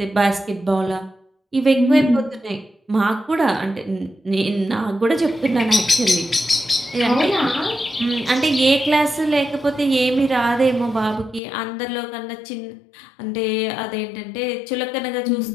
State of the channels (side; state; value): right; drops out; at 11.4 s